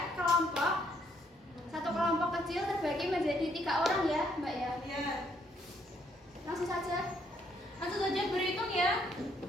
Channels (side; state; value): both; normal; correlation 0.70